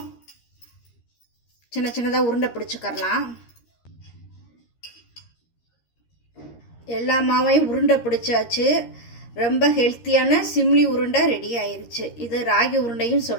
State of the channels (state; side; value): late; right; 13 ms